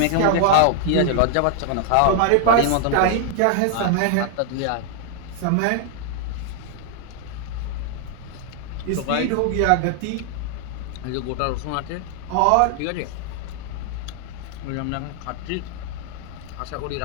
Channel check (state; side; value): different; both; correlation 0.00